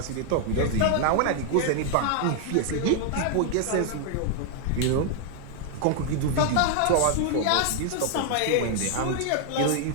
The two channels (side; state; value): both; different; correlation 0.00